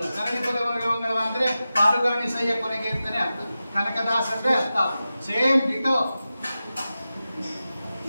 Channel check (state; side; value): inverted; both; correlation -0.93